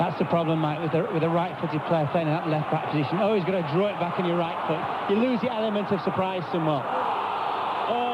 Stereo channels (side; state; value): both; identical; correlation 1.00